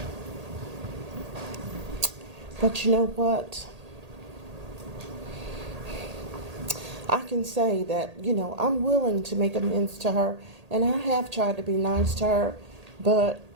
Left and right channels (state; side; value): late; left; 1.8 ms